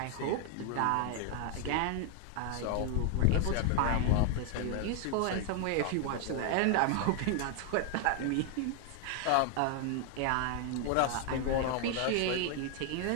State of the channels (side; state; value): both; different; correlation 0.00